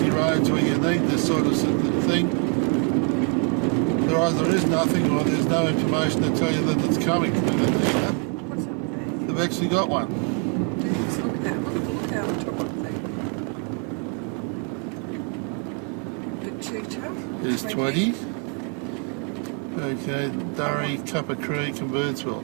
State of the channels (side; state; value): left; quieter; 34.6 dB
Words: roads where you need this sort of thing. There either is nothing or there's no information to tell you that it's coming. What's up there? They've actually got one. Jeez, look at that. Look out the top of the thing. Batuta. There's 20. Okay, Bedourie, Cuppa Creek and Birdsville.